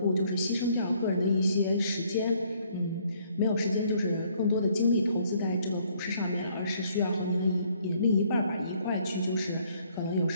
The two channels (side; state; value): both; inverted; correlation -0.65